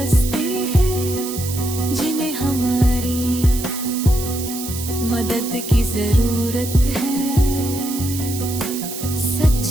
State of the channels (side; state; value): right; noise; hiss, 8 dB below the sound